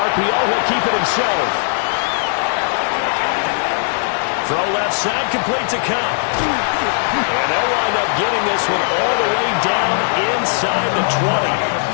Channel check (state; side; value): silent; right; digital silence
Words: he'll keep it himself. Throw left side, complete to Cup. And they'll wind up getting this one all the way down inside the 20.